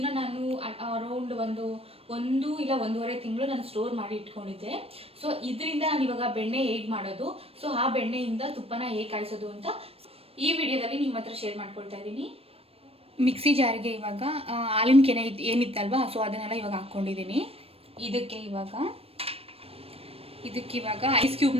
ನಾನು ಅರೌಂಡ್ ಒಂದು ಇಲ್ಲ ಒಂದೂವರೆ ತಿಂಗಳು ನಾನು ಸ್ಟೋರ್ ಮಾಡಿ ಇಟ್ಕೊಂಡಿದ್ದೆ. ಸೊ ಇದರಿಂದ ನಾನು ಇವಾಗ ಬೆಣ್ಣೆ ಹೇಗೆ ಮಾಡೋದು, ಸೊ ಆ ಬೆಣ್ಣೆಯಿಂದ ತುಪ್ಪನ ಹೇಗೆ ಕಾಯಿಸೋದು ಅಂತ ಈ ವಿಡಿಯೋದಲ್ಲಿ ನಿಮ್ಮ ಹತ್ರ ಶೇರ್ ಮಾಡ್ಕೊಳ್ತಾ ಇದ್ದೀನಿ. ಮಿಕ್ಸಿ ಜಾರಿಗೆ ಇವಾಗ ಹಾಲಿನ ಕೆನೆ ಏನಿತ್ತಲ್ವಾ, ಸೊ ಅದನ್ನೆಲ್ಲ ಇವಾಗ ಹಾಕ್ಕೊಂಡಿದ್ದೀನಿ. ಇದಕ್ಕೆ ಇವಾಗ ಐಸ್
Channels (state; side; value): late; left; 0.28 ms